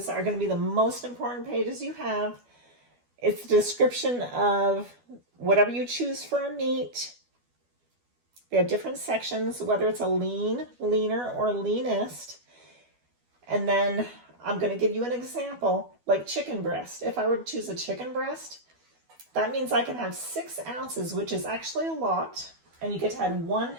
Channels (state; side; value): late; left; 12 ms